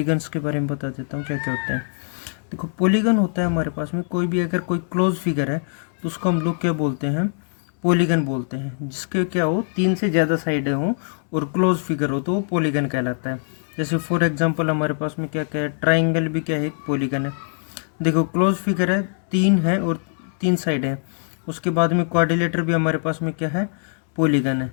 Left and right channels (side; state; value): right; silent; digital silence